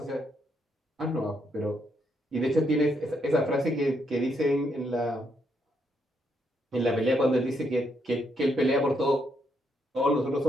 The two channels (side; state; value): both; normal; correlation 0.76